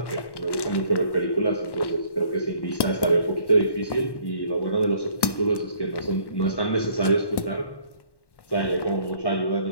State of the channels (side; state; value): right; late; 1.1 ms